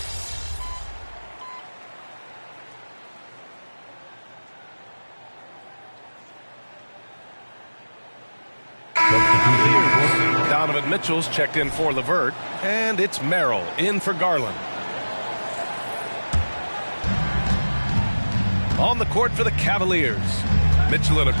Donovan Mitchell's checked in for LeVert, and it's Merrill in for Garland. On the court for the Cavaliers, Mitchell and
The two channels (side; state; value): both; inverted; correlation -1.00